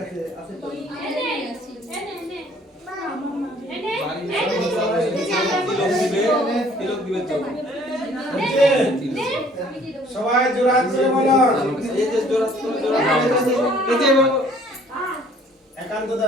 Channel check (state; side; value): normal; both; correlation 0.57